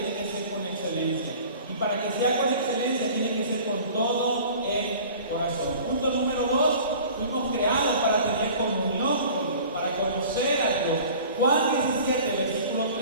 que ser con excelencia. Y para que sea con excelencia tiene que ser con todo el corazón. Punto número 2, fuimos creados para tener comunión con Dios, para conocer a Dios. Juan 17, versículo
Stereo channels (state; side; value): inverted; both; correlation -0.45